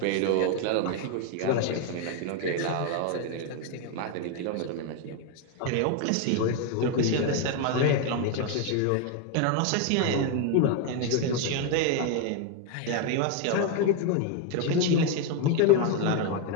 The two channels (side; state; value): both; different; correlation 0.01